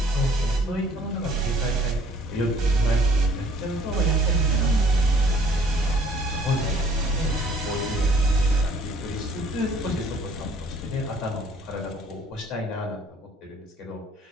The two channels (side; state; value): both; normal; correlation 0.57